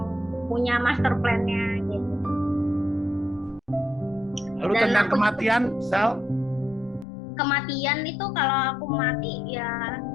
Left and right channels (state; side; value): drops out; right; at 7.1 s